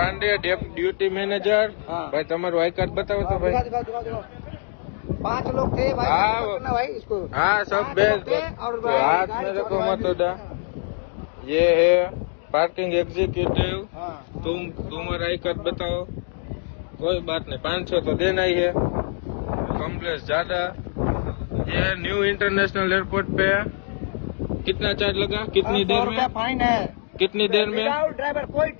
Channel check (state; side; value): silent; right; digital silence